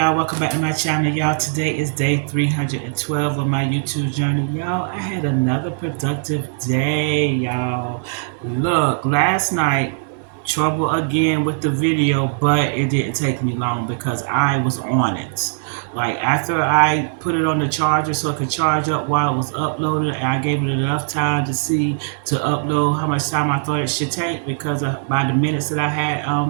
welcome back to my channel. Y'all, today is day 312 of my YouTube journey. Y'all, I had another productive day, y'all. Look, last night, trouble again with the video, but it didn't take me long because I was on it. Like, after I put it on the charger so it could charge up while it was uploaded, and I gave it enough time to see to upload how much time I thought it should take because by the minutes that I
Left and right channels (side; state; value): left; silent; digital silence